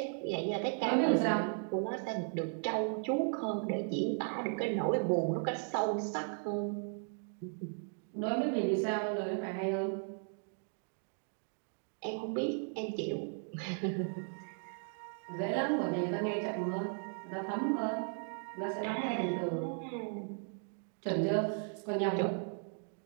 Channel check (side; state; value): left; silent; 54 dB below the other